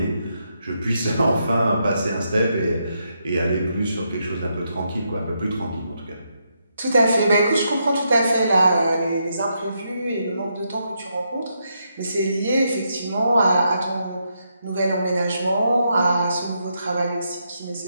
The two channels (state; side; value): inverted; both; correlation -0.80